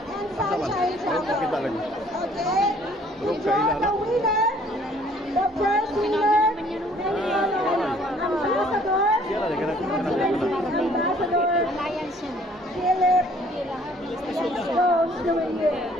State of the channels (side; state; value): both; normal; correlation 0.58